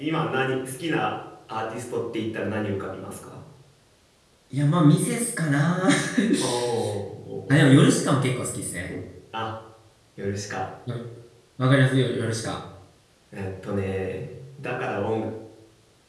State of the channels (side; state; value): both; identical; correlation 1.00